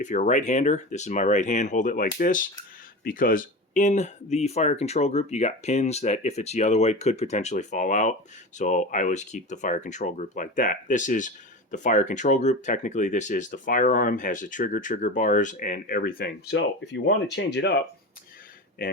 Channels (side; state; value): both; normal; correlation 0.27